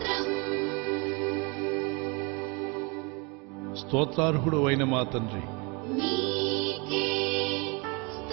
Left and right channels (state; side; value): quieter; left; 29.9 dB